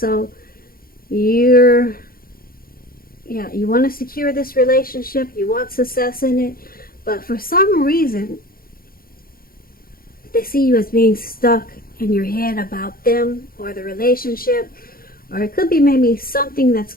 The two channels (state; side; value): late; right; 0.42 ms